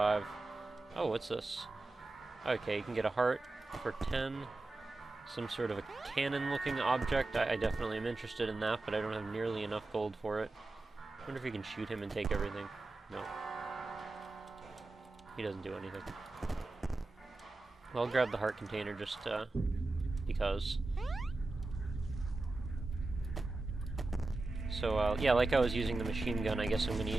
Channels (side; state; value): left; quieter; 3.1 dB